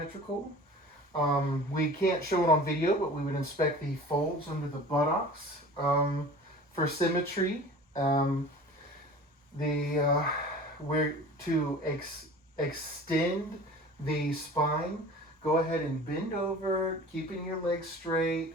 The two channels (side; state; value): both; normal; correlation 0.41